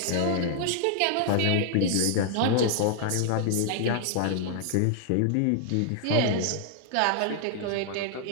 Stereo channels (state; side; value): different; both; correlation -0.01